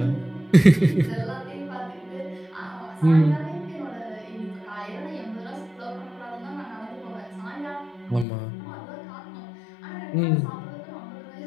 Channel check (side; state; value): right; drops out; at 8.2 s